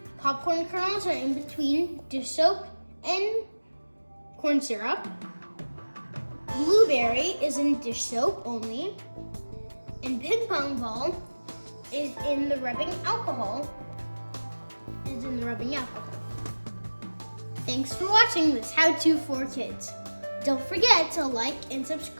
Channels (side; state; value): both; inverted; correlation -1.00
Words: Popcorn kernels are in between dish soap and corn syrup. Blueberry is in dish soap only. And ping pong ball is in the rubbing alcohol. Thanks for watching this how-to for kids. Don't forget to like and